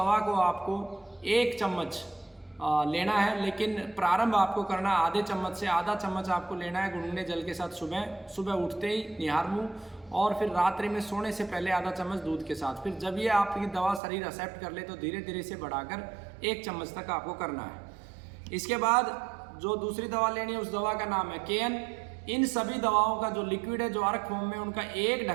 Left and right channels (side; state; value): left; drops out; at 14.0 s